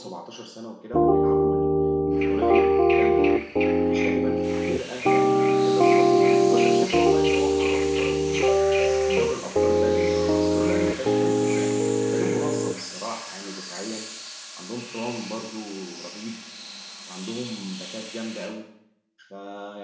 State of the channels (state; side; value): identical; both; correlation 1.00